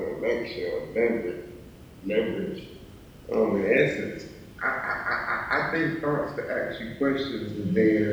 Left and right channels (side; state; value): both; identical; correlation 1.00